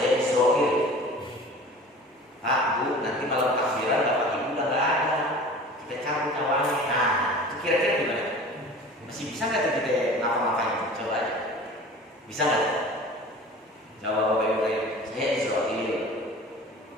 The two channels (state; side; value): normal; both; correlation 0.41